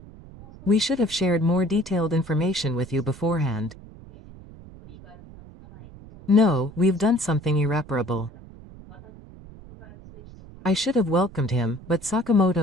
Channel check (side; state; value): right; noise; rumble, 19 dB below the sound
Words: We should have shared more detailed information with you beforehand. No, we've done something irreparable. I should have welcomed him, but